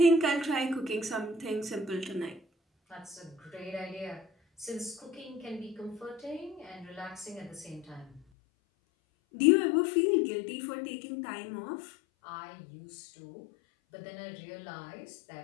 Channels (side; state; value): right; drops out; at 8.2 s